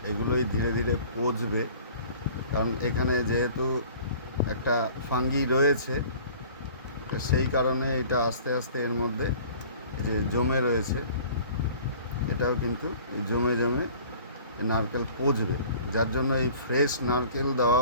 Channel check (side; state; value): both; inverted; correlation -0.48